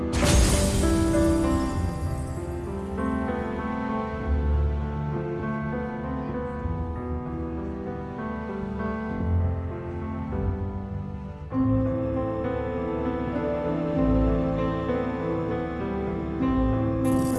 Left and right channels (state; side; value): identical; both; correlation 1.00